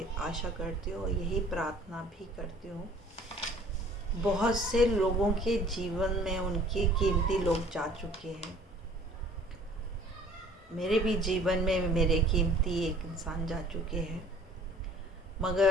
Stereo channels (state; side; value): normal; both; correlation 0.52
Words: आशा करती हूँ, यही प्रार्थना भी करती हूँ। बहुत से लोगों के जीवन में उनके कीमती लोग जा चुके हैं। मेरे भी जीवन में मेरे कीमती एक इंसान जा चुके हैं,